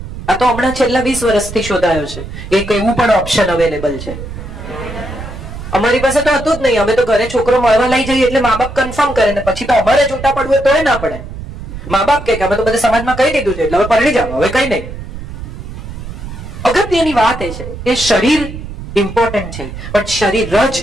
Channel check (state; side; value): noise; right; rumble, 10 dB below the sound